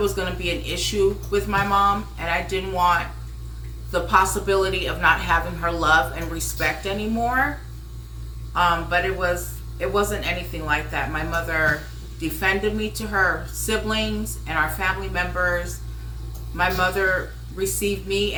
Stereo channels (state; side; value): identical; both; correlation 1.00